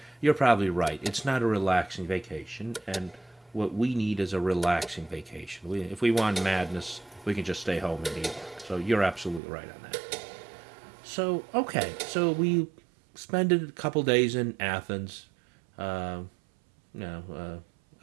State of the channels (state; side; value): drops out; left; at 9.4 s